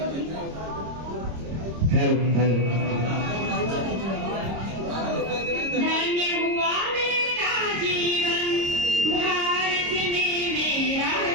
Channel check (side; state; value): left; late; 26 ms